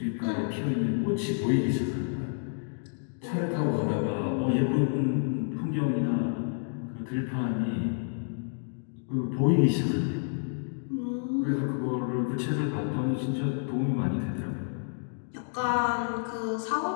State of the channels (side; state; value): right; silent; digital silence